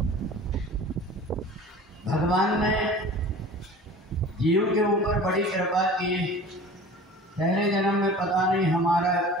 भगवान ने जीव के ऊपर बड़ी कृपा की। पहले जन्म में पता नहीं हमारा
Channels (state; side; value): normal; both; correlation 0.41